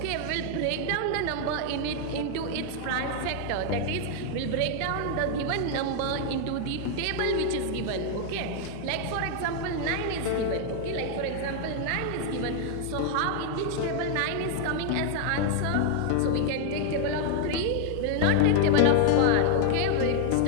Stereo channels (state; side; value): different; both; correlation 0.00